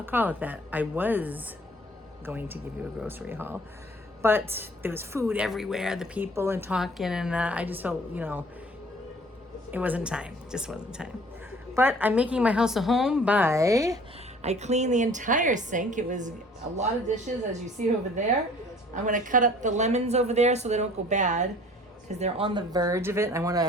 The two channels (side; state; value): both; normal; correlation 0.51